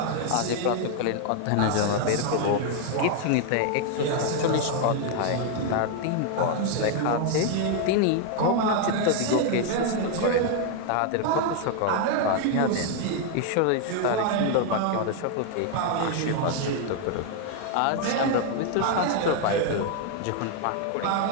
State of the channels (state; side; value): different; both; correlation 0.00